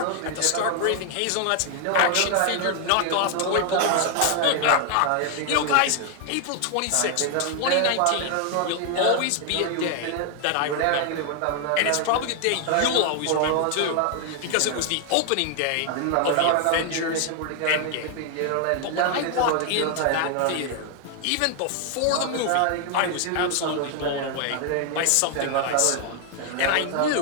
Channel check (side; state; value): both; different; correlation 0.00